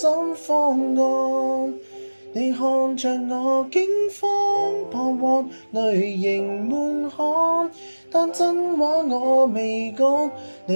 方案，你看着我驚慌彷徨，淚盈滿腔，但真話我未講。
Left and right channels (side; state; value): both; inverted; correlation -1.00